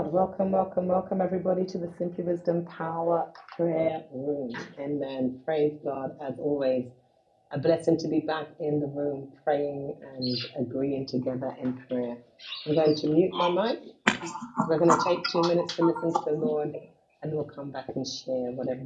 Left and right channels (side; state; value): both; identical; correlation 1.00